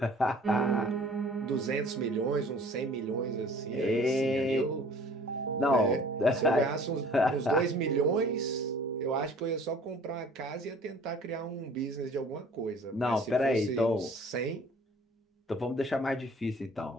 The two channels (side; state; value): both; normal; correlation 0.50